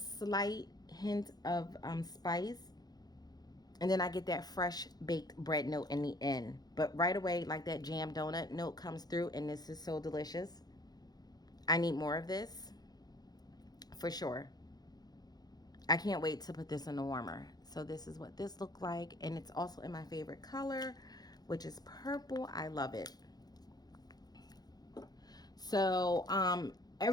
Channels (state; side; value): late; right; 0.19 ms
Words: hint of spice. And then I get that fresh baked bread note in the end. But right away, like that jam donut note comes through, and this is so delicious. I need more of this for sure. I can't wait to put this in the warmer. So this is what this looked like. And it's also in my favorite color, which is purple. I love it. So